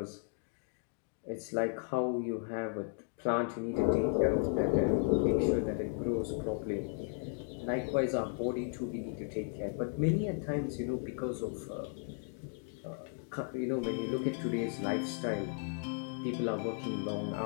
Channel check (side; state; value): right; silent; 54 dB below the other